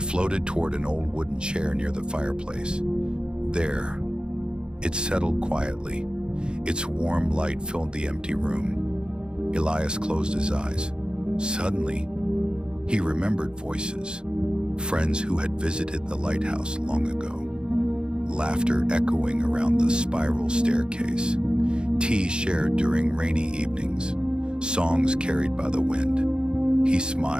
floated toward an old wooden chair near the fireplace. There, it settled quietly. Its warm light filled the empty room. Elias closed his eyes. Suddenly, he remembered voices, friends who had visited the lighthouse long ago. Laughter echoing around the spiral staircase, tea shared during rainy evenings, songs carried by the wind. He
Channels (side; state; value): left; late; 0.050 ms